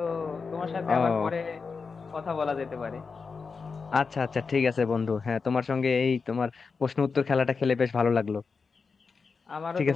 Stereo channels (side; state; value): right; quieter; 5.0 dB